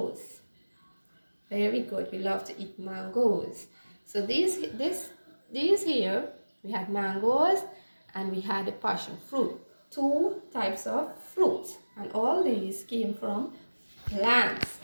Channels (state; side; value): inverted; both; correlation -1.00